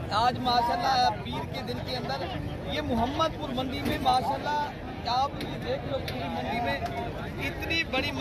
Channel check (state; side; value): identical; both; correlation 1.00